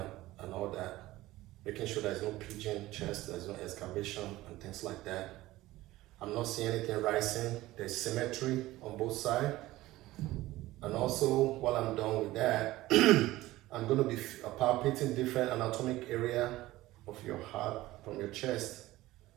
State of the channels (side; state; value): left; quieter; 17.3 dB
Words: and all that, making sure there's no pigeon chest, there's no excavation and things like that. I'm not seeing anything rising. There's symmetry on both sides. And also, while I'm done with that, I'm going to be palpating different anatomic area of your heart from your chest.